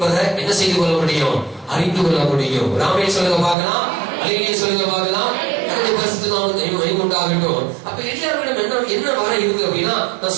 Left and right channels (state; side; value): drops out; left; at 3.6 s